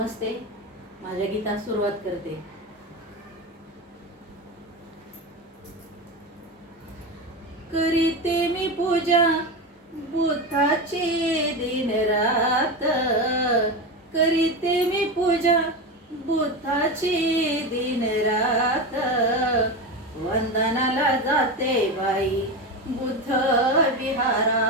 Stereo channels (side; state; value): both; normal; correlation 0.20